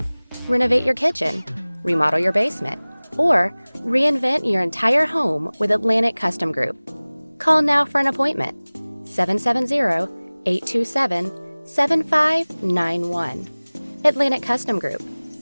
Renovate your kitchen, remodel your basement, or reinvent your entire home with Atlantic Custom Group. Call now for an appointment. 770-827-7591. Atlantic Custom Group,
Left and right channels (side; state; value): both; inverted; correlation -1.00